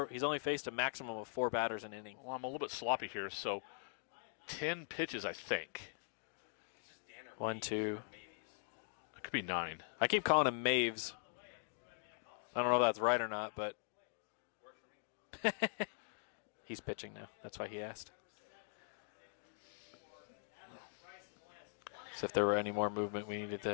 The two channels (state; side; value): silent; right; digital silence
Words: He's only faced a maximum of 4 batters an inning. Well, I'm a little bit sloppy here, so 10 pitches, I think. 1, 2. It could be 9. I keep calling him Maves. I don't know if that's right or not, but he's pitching now. That's why he asked. So if there were any more movement, we needed